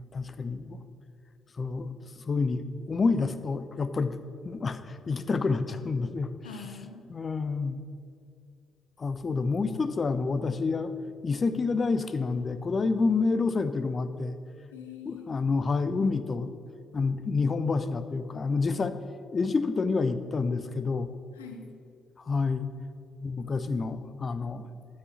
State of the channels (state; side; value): quieter; right; 3.8 dB